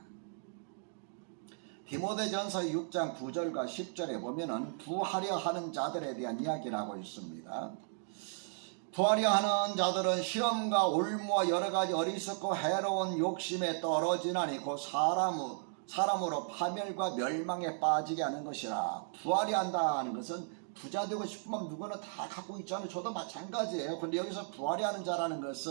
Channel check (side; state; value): left; silent; digital silence